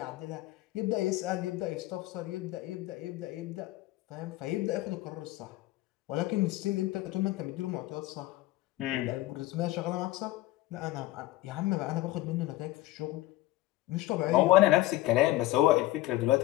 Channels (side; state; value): right; quieter; 17.0 dB